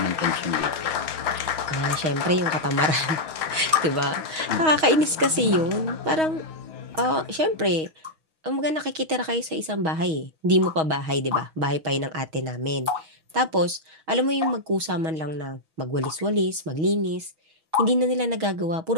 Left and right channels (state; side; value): late; left; 6.3 ms